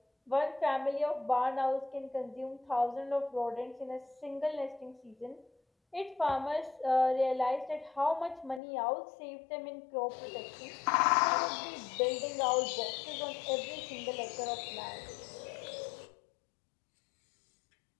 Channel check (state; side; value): drops out; right; at 8.6 s